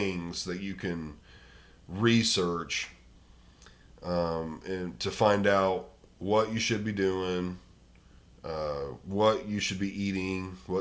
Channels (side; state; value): both; identical; correlation 1.00